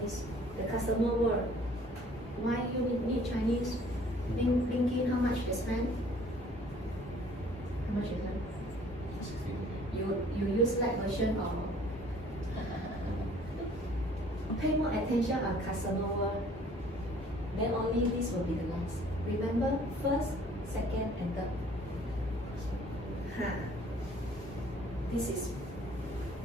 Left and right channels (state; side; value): normal; both; correlation 0.55